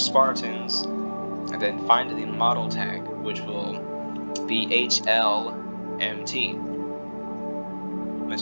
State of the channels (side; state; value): both; inverted; correlation -1.00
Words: and then find the model tag, which will be HLMT. Once